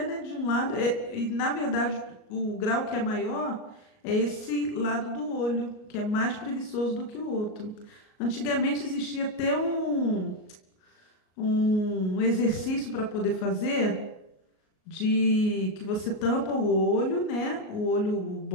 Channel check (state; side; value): late; right; 38 ms